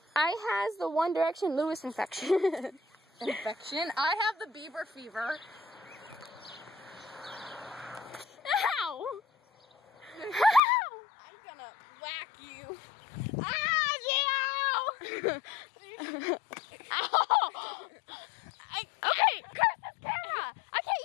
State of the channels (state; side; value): drops out; right; at 10.6 s